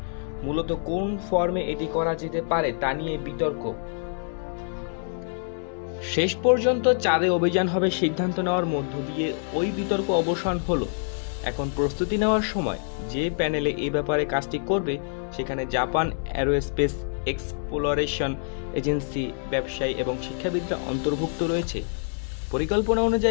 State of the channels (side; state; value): right; silent; digital silence